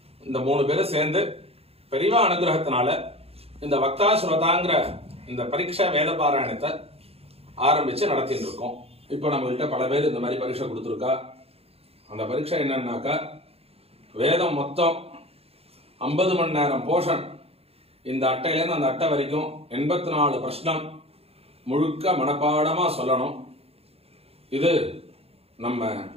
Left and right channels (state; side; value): late; left; 0.29 ms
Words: இந்த 3 பேரும் சேர்ந்து பெரியவா அனுகிரகத்தினால இந்த வக்தா ஸ்ரோதாங்கிற இந்த பரீட்சை வேத பாராயணத்தை ஆரம்பிச்சு நடத்திட்டு இருக்கோம். இப்போ நம்மகிட்ட பல பேர் இந்த மாதிரி பரீட்சை கொடுத்துருக்கா. அந்த பரீட்சை என்னன்னாக்கா வேதம் மொத்தம் 50 மணி நேரம் போஷன். இந்த அட்டையிலேருந்து அந்த அட்டை வரைக்கும் 84 பிரஷ்னம் முழுக்க மனப்பாடமா சொல்லணும். இது நம்ம